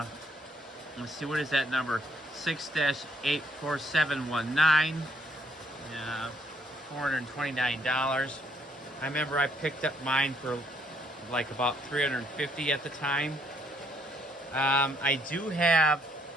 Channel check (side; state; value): both; normal; correlation 0.69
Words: see, what is that number? 6-84719. $429. I remember I picked up mine for like about $350 at the time. I do have